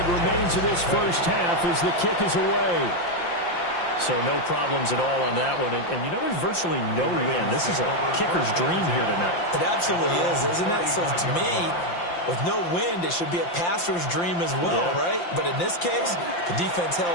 remains of this first half as the kick is away. So no problems at all on that one. And you know, there's virtually no win. This is a kicker's dream here tonight. It absolutely is, isn't it? So to me, with no wind, it should be a passer's dream as well, right? But in this case, the defense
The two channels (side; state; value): right; late; 5.8 ms